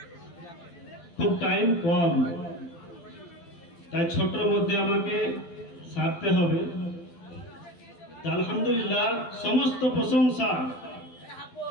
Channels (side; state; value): right; late; 12 ms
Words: খুব টাইম কম তাই ছোটর মধ্যে আমাকে সারতে হবে আলহামদুলিল্লাহ সমস্ত প্রশংসা